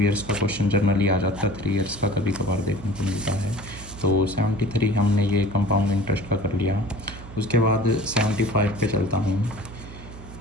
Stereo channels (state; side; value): noise; right; hum, 15 dB below the sound